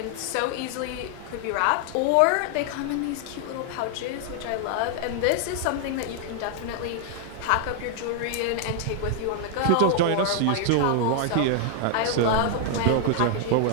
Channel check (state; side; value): different; both; correlation 0.00